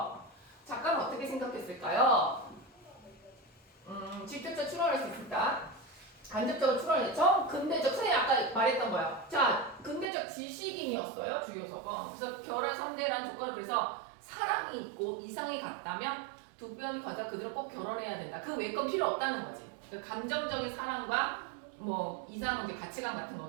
작가는 어떻게 생각했을까요? 직접적 추론할 수 있을까? 간접적으로 추론할 정 근대적, 선생님 아까 말했던 거야. 자, 근대적 지식인이었어요, 주요석은. 그래서 결혼 상대라는 조건을 그래서 사랑이 있고 이상이 같다면 두 변을 가져 그대로 꼭 결혼해야 된다. 그 외 건 필요 없다는 거지. 그러니까 감정적인 사랑과 뭐 이상은 이제 가치관 같은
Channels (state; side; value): drops out; left; at 10.1 s